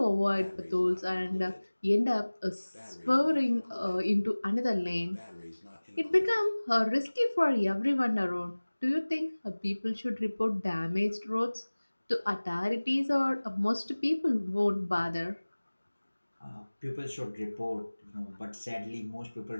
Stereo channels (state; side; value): inverted; both; correlation -1.00